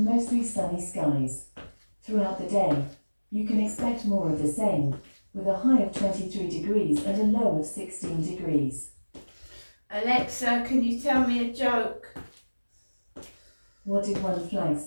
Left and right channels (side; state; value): both; inverted; correlation -1.00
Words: sunny skies. Throughout the day, you can expect more of the same, with a high of 23 degrees and a low of 16 degrees. Alexa, can you tell me a joke? What did one flag